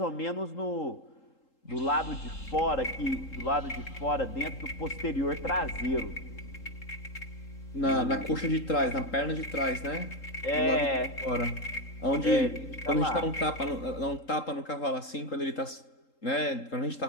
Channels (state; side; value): late; right; 3.8 ms